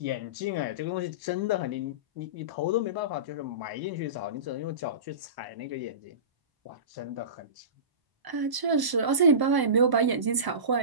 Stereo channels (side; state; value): left; late; 1.0 ms